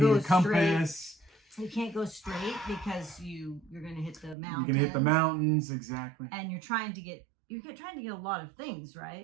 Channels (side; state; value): left; drops out; at 4.4 s